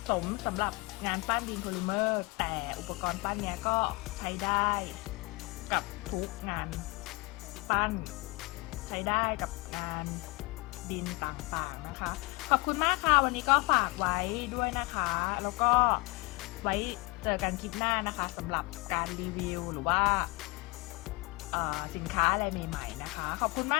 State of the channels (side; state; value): right; quieter; 25.7 dB